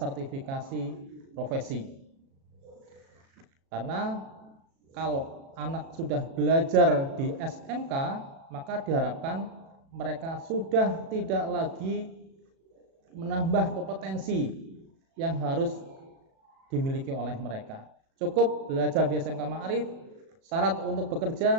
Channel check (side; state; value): left; late; 37 ms